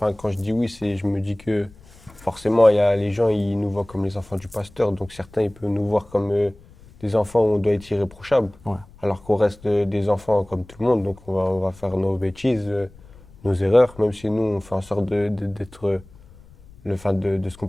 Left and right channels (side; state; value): left; noise; rumble, 23 dB below the sound